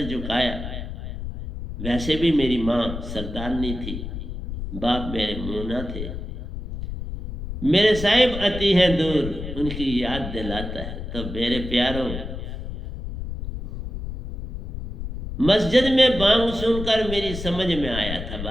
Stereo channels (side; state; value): left; noise; rumble, 7 dB below the sound